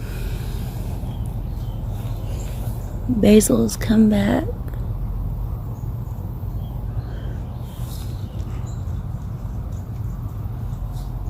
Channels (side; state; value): both; identical; correlation 1.00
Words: Basil's come back.